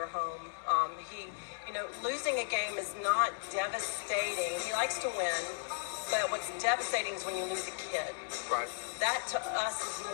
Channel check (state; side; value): silent; right; 54 dB below the other